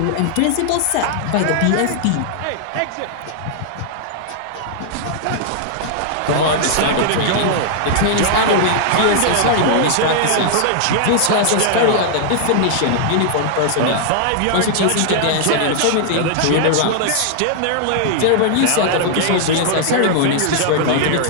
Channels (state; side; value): different; both; correlation -0.01